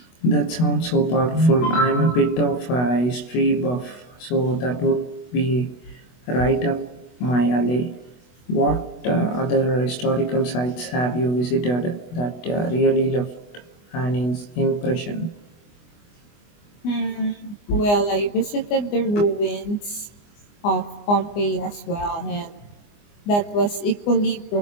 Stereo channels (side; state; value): right; late; 24 ms